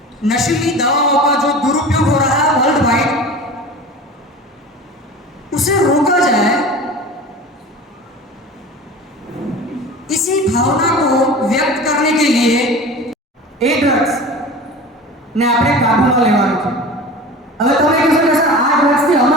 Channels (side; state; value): both; normal; correlation 0.36